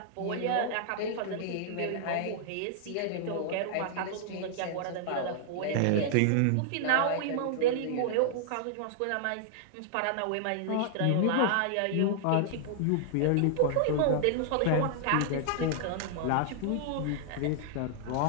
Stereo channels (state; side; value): different; both; correlation -0.01